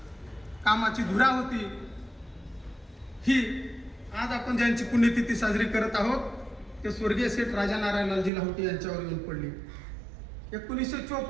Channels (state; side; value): drops out; left; at 8.3 s